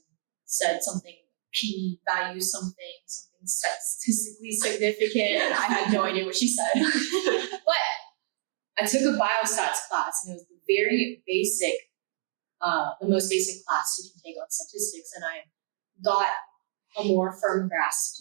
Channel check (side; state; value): left; silent; digital silence